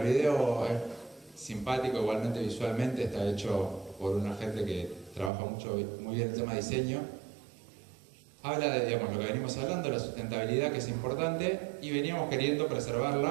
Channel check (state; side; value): drops out; left; at 5.3 s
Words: video es simpático, igualmente visualmente, está hecho por una gente que trabaja muy bien el tema de diseño. Habla de, digamos, lo que venimos hablando, la sustentabilidad, que es importante, y veníamos queriendo